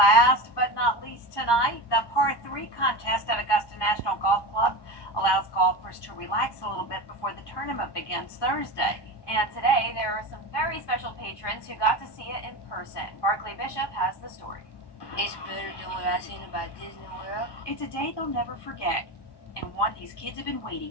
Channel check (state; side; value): late; right; 1.1 ms